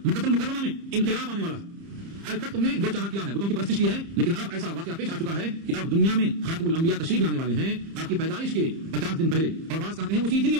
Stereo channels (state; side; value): late; left; 30 ms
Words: مکہ المکرمہ میں انقلاب آنے والا ہے. آج تک تم نے جو چاہا کیا ہے، بتوں کی پرستش کی ہے، لیکن اب ایسا واقعہ پیش آ چکا ہے کہ اب دنیا میں خاتم الانبیاء تشریف لانے والے ہیں آپ کی پیدائش کے 50 دن پہلے، اور بعض کہتے ہیں اسی دن یہ